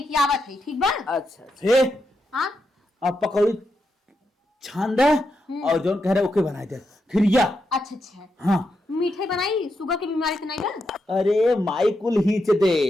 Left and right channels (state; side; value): normal; both; correlation 0.84